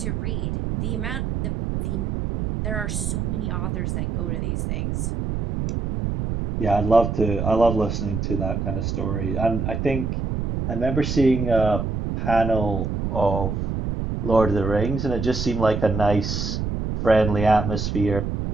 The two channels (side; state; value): right; noise; rumble, 2 dB below the sound